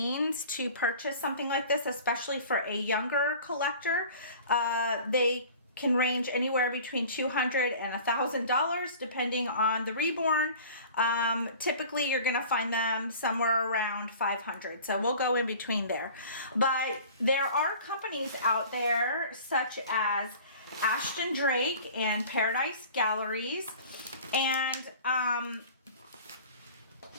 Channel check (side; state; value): both; inverted; correlation -0.44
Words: to purchase something like this, especially for a younger collector. They can range anywhere between $200 and $1,000 depending on the Reborn. Typically you're going to find them somewhere around $500, so we'll go in between there. But there are companies out there such as Ashton Drake and Paradise Galleries, and